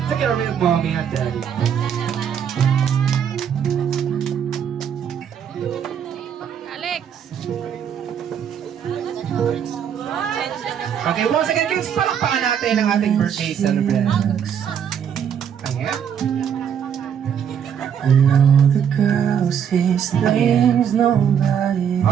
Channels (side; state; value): left; quieter; 8.3 dB